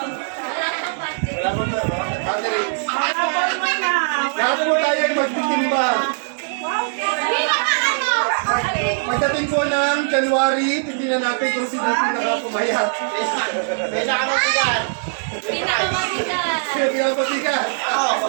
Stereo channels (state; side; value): silent; left; digital silence